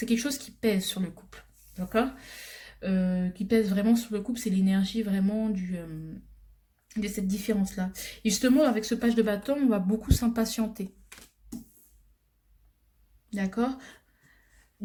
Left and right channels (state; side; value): identical; both; correlation 1.00